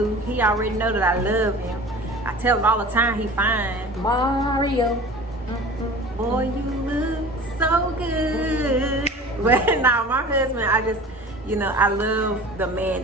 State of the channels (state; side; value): normal; both; correlation 0.39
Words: he already know that I love him. I tell him all the time he fine. Mario. Mm-hmm. Boy, you look so good. But now my husband, I love the man